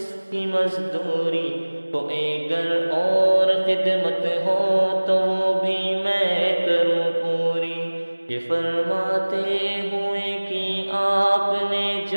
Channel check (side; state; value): both; inverted; correlation -1.00